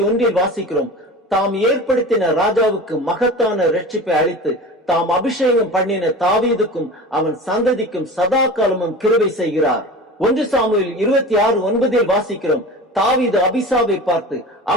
வாசிக்கிறோம். தாம் ஏற்படுத்தின ராஜாவுக்கு மகத்தான ரட்சிப்பை அளித்து தாம் அபிஷேகம் பண்ணின தாவீதுக்கும் அவன் சந்ததிக்கும் சதா காலமும் கிருபை செய்கிறார். 1 சாமுவேல் 26:9 வாசிக்கிறோம். தாவீது அபிசாவை பார்த்து,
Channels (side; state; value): both; normal; correlation 0.34